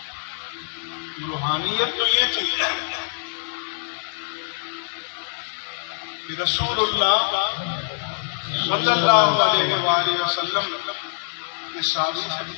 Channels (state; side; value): silent; right; digital silence